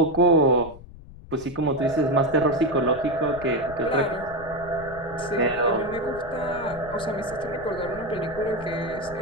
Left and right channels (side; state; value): left; noise; rumble, 17 dB below the sound